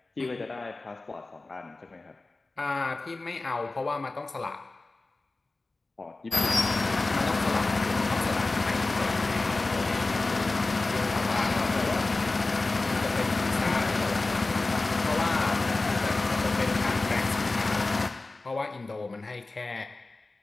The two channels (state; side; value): quieter; right; 3.3 dB